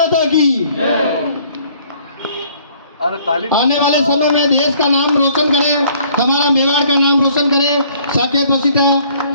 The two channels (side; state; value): both; inverted; correlation -0.59